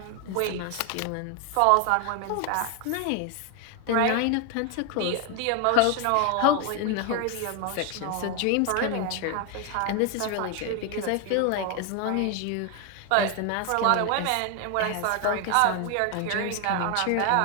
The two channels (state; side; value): different; both; correlation 0.01